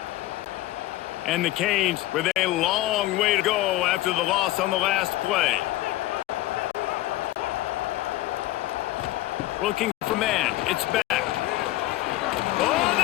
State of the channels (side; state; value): right; quieter; 16.4 dB